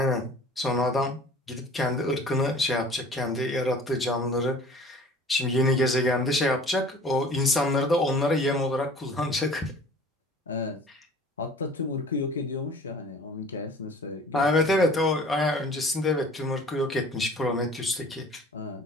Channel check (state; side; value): normal; both; correlation 0.47